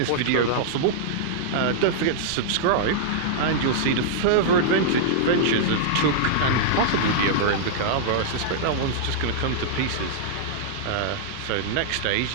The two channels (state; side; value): different; both; correlation -0.02